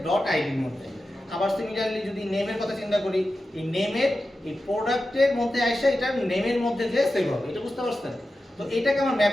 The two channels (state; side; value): normal; both; correlation 0.92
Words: ডট আইডির মধ্যে। আবার সিমিলারলি যদি নেমের কথা চিন্তা করি, এই নেমের এই প্রোডাক্টের মধ্যে আসে এটা নেমের মধ্যে যে সেভ হবে। এটা বুঝতে পারছেন? তো এটাকে আমার